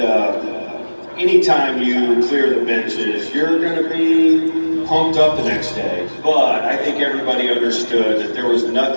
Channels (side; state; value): both; inverted; correlation -1.00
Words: anytime you clear the benches, you're going to be pumped up the next day. But I think everybody understood that there was